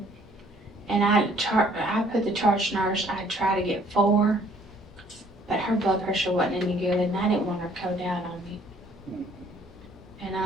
And I put the charge nurse, I tried to get 4, but her blood pressure wasn't any good and I didn't want her to go down on me. And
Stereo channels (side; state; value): both; normal; correlation 0.60